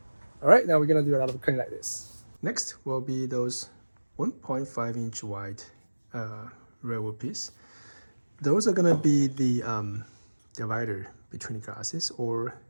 All right, now we're gonna do a lot of cutting like this. Next will be those 1.5-inch wide railwood piece. Those are gonna be the divider between the glasses, or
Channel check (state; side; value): inverted; both; correlation -1.00